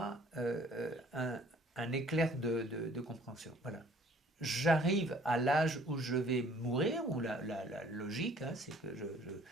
un éclair de compréhension. Voilà. J'arrive à l'âge où je vais mourir, où la logique, hein, c'est que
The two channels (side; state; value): both; normal; correlation 0.56